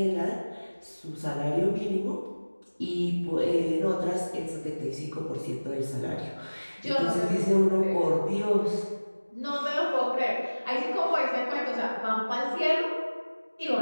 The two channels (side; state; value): both; inverted; correlation -1.00